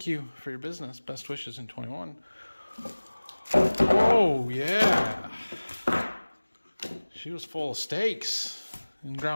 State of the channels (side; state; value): both; inverted; correlation -1.00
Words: you for your business. Best wishes in 21. Oh, yeah. She was full of steaks and